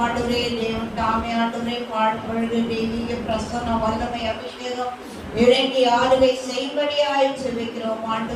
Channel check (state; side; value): identical; both; correlation 1.00